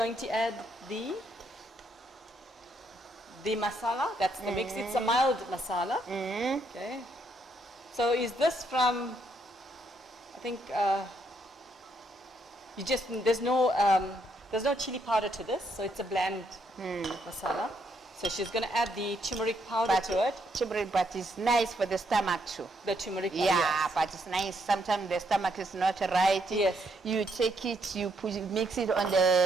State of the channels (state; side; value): normal; both; correlation 0.74